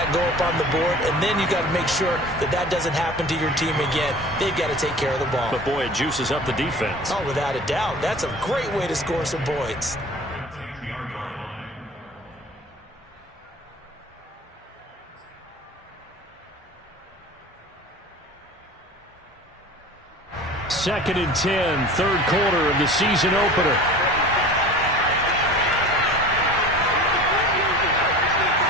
go up on the board. And then you got to make sure that that doesn't happen to your team again. They've got to take care of the ball. But, boy, it juices up the defense. Oh, without a doubt. That's a great way to score some points. Second and 10, 3rd quarter of the season opener.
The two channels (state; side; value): normal; both; correlation 0.41